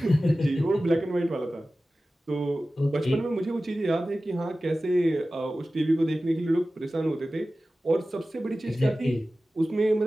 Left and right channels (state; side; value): normal; both; correlation 0.96